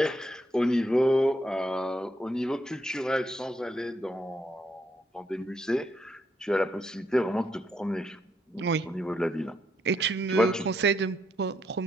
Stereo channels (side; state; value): both; normal; correlation 0.77